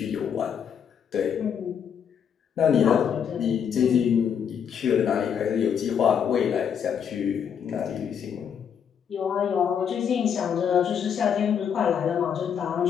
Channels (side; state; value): right; quieter; 7.8 dB